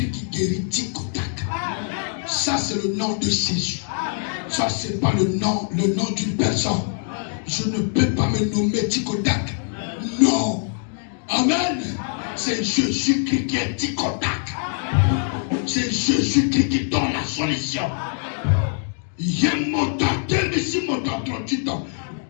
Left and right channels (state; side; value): silent; right; 63 dB below the other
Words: qui guérit Ticotek. Ça, c'est le nom de Jésus. Ça, c'est pas le nom d'une personne. Je ne peux pas me nommer Ticotek. Non. Amen. C'est Jésus-Christ qui est Ticotek. c'est Jésus-Christ qui donne la solution. Il y a mon temps, ici mon temps, 38 ans.